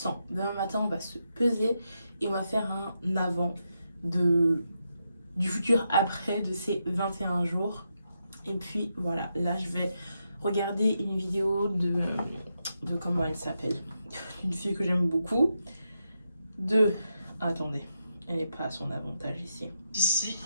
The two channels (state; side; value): inverted; both; correlation -0.84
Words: Demain matin, on va se peser et on va faire un avant du futur après de ces 21 jours. Et puis, voilà, là, je vais regarder une vidéo de comment elle s'appelle. Une fille que j'aime beaucoup. Attendez, elle n'est pas à son avantage ici. Ici,